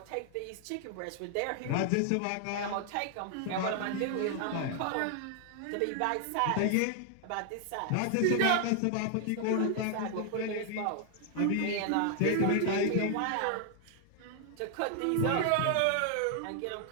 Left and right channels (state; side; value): different; both; correlation 0.00